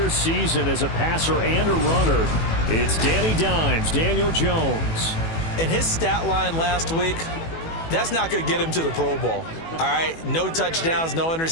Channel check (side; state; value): right; late; 18 ms